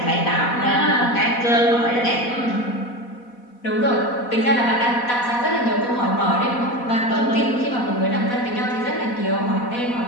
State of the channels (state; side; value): late; right; 4.1 ms